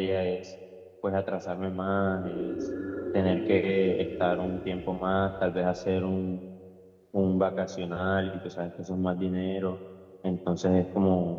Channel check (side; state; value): both; identical; correlation 1.00